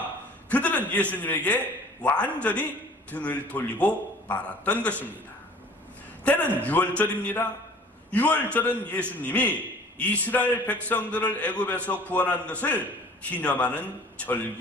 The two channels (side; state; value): both; normal; correlation 0.48